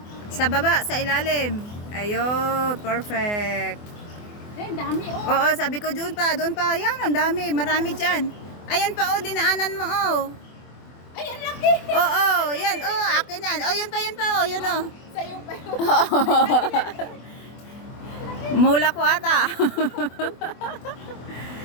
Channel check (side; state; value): right; late; 24 ms